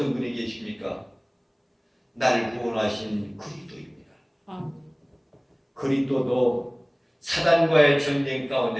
분이 계십니까? 날 구원하신 그리스도입니다. 그리스도도 사단과의 전쟁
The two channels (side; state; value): both; identical; correlation 1.00